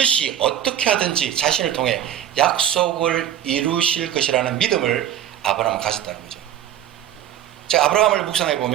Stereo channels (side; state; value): left; quieter; 10.8 dB